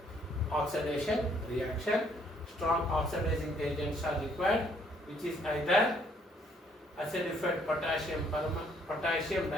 Oxidation reaction. Strong oxidizing agents are required, which is either acidified potassium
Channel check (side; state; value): both; normal; correlation 0.66